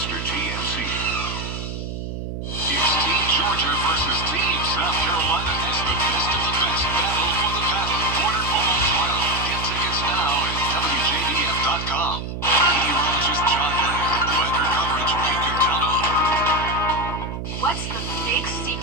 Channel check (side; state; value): right; noise; hum, 6 dB below the sound